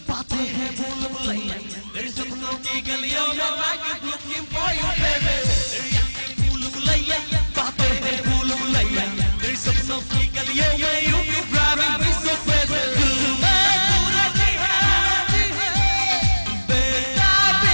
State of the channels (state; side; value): inverted; both; correlation -1.00